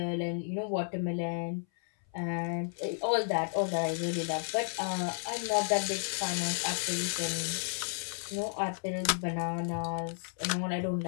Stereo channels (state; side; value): silent; right; 56 dB below the other